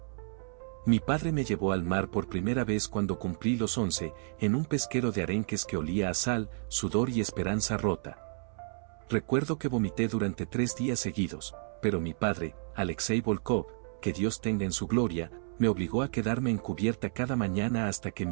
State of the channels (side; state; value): left; silent; 57 dB below the other